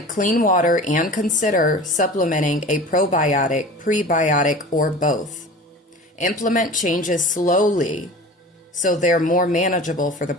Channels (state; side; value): normal; both; correlation 0.38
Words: clean water and consider supplementing a probiotic, prebiotic, or both. Implement changes slowly so they're more manageable for the